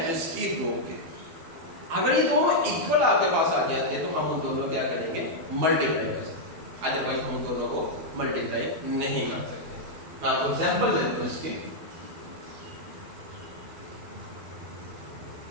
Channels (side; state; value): left; late; 12 ms